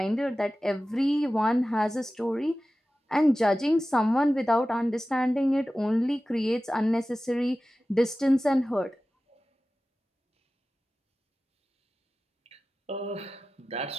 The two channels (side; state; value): both; normal; correlation 0.95